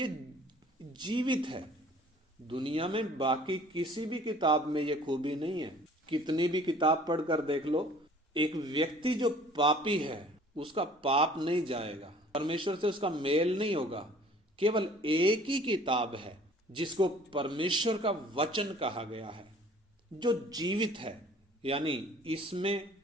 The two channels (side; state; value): both; normal; correlation 0.52